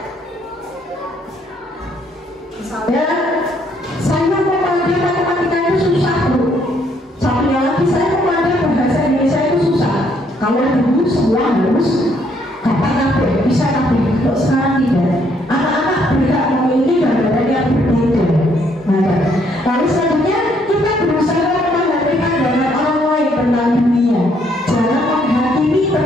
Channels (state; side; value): normal; both; correlation 0.69